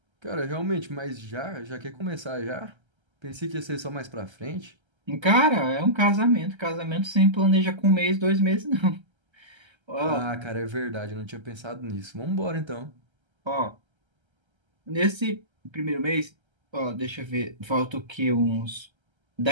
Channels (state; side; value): late; left; 1.3 ms